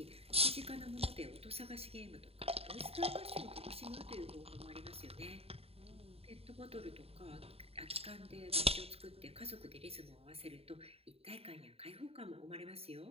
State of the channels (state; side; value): late; left; 0.29 ms